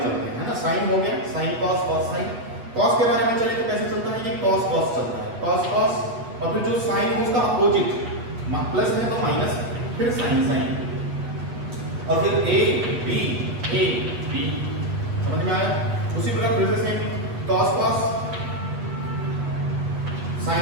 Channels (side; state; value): left; late; 8.3 ms